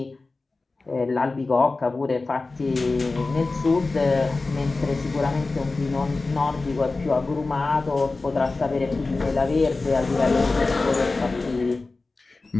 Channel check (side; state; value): right; quieter; 3.6 dB